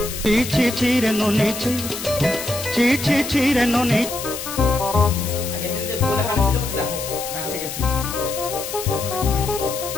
ছি ছি ছি রে ননি ছি ছি ছি ছি রে ননি আগে দিন যে বলে কাটছিল ওটা দেখো ম্যাচে গেছে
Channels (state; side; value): noise; left; hiss, 8 dB below the sound